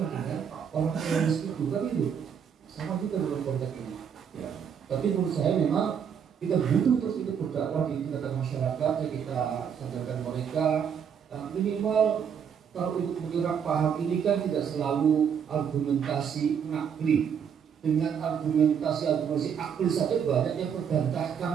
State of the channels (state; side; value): quieter; left; 7.6 dB